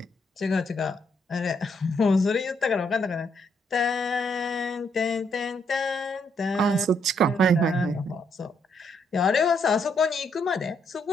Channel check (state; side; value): normal; both; correlation 0.74